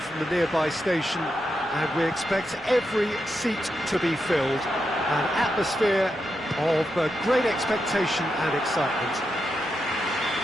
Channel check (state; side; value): noise; right; rumble, 27 dB below the sound